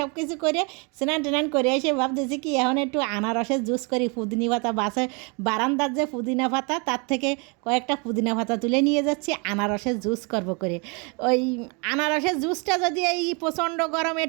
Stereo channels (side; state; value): left; quieter; 32.5 dB